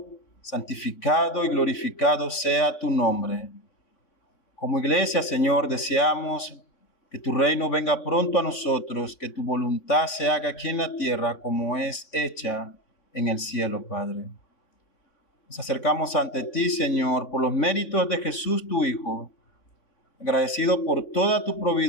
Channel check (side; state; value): right; late; 3.5 ms